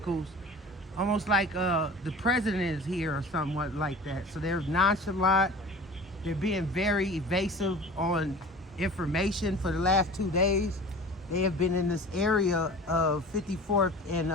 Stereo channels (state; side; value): normal; both; correlation 0.40